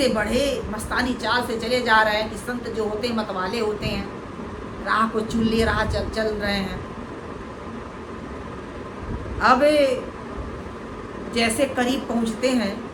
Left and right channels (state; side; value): identical; both; correlation 1.00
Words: बढ़े, मस्तानी चाल से चले जा रहे हैं कि संत जो होते हैं मतवाले होते हैं, राह को चुन लिए, राह चल रहे हैं। अब जैसे करीब पहुँचते हैं,